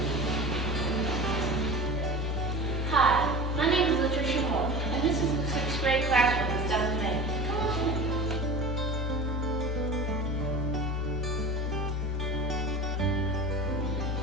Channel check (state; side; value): normal; both; correlation 0.35